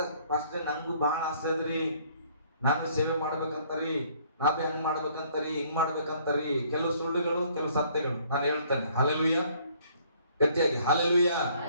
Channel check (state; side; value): inverted; both; correlation -0.61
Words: ಫಸ್ಟ್ ನಂಗೂ ಬಹಳ ಆಸೆ ಅದ್ರಿ, ನಾನು ಸೇವೆ ಮಾಡ್ಬೇಕಂತಾರಿ, ನಾವೇ ಹಂಗ್ ಮಾಡ್ಬೇಕಂತಾರಿ, ಹಿಂಗ್ ಮಾಡ್ಬೇಕಂತಾರಿ. ಕೆಲವು ಸುಳ್ಳುಗಳು, ಕೆಲವು ಸತ್ಯಗಳು ನಾನು ಹೇಳ್ತೇನೆ. ಹಲ್ಲೆಲೂಯ, ಗಟ್ಟಿಯಾಗಿ ಹಲ್ಲೆಲೂಯ.